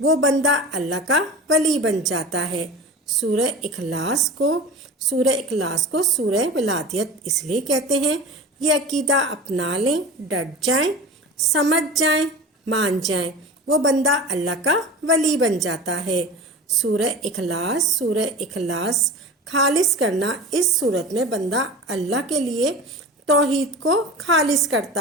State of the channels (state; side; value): normal; both; correlation 0.33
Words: وہ بندہ اللہ کا ولی بن جاتا ہے۔ سورہ اخلاص کو سورہ ولادیت اس لیے کہتے ہیں یہ عقیدہ اپنا لیں، ڈٹ جائیں، سمجھ جائیں، مان جائیں، وہ بندہ اللہ کا ولی بن جاتا ہے۔ سورہ اخلاص خالص کرنا، اس صورت میں بندہ اللہ کے لیے توحید کو خالص